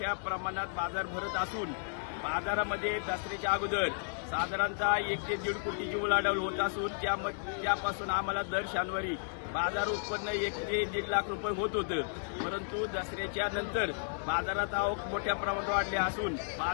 प्रमाणात बाजार भरत असून बाजारामध्ये दसऱ्याच्या अगोदर साधारणतः 1 ते 1.5 कोटीची उलाढाल होत असून त्यापासून आम्हाला दर शनिवारी बाजार उत्पन्न 1 ते 1.5 लाख रुपये होत होतं। परंतु दसऱ्याच्या नंतर बाजारात आवक मोठ्या प्रमाणात वाढली असून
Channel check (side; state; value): right; silent; digital silence